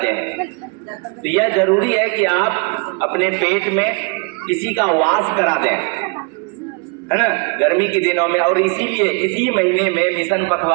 हैं। तो यह जरूरी है कि आप अपने पेट में किसी का वास करा दें, है ना, गर्मी के दिनों में। और इसीलिए इसी महीने में मिशन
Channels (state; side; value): quieter; left; 31.8 dB